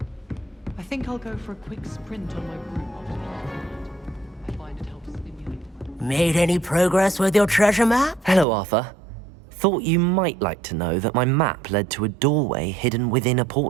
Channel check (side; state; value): left; drops out; at 8.5 s